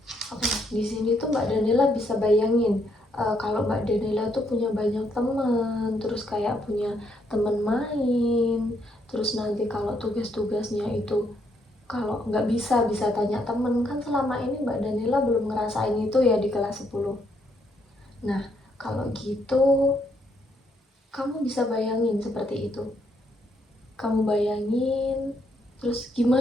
Oke, di sini tuh Mbak Danila bisa bayangin kalau Mbak Danila tuh punya banyak teman, terus kayak punya teman main, terus nanti kalau tugas-tugasnya itu kalau nggak bisa tanya temen, kan selama ini Mbak Danila belum ngerasain itu ya di kelas 10. Nah, kalau gitu kamu bisa bayangin seperti itu. Kamu bayangin, terus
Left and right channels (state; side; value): normal; both; correlation 0.73